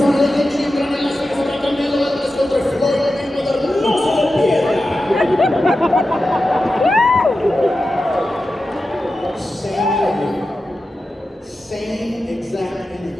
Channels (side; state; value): both; normal; correlation 0.92